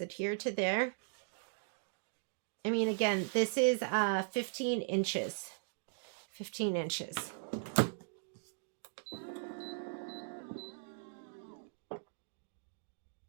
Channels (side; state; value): left; silent; digital silence